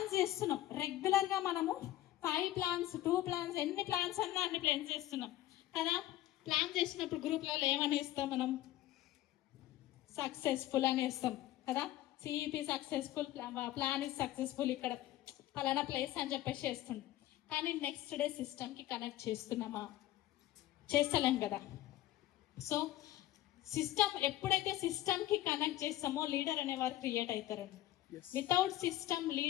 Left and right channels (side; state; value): right; quieter; 14.8 dB